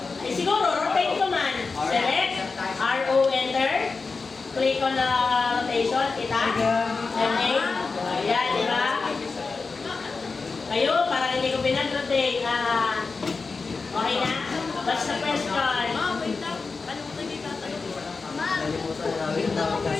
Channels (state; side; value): quieter; right; 4.4 dB